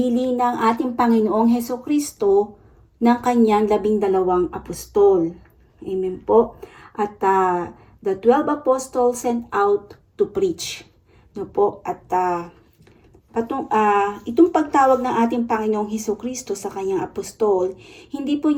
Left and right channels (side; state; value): both; identical; correlation 1.00